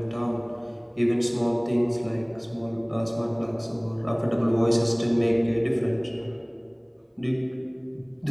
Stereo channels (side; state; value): both; identical; correlation 1.00